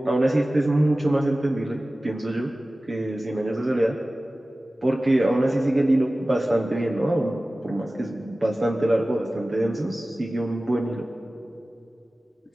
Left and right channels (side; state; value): both; normal; correlation 0.97